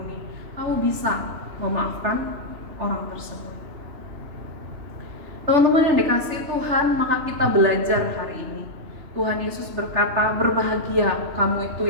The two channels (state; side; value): late; left; 3.0 ms